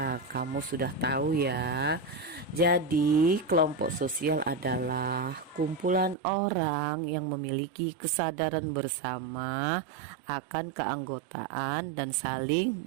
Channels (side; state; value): left; drops out; at 6.2 s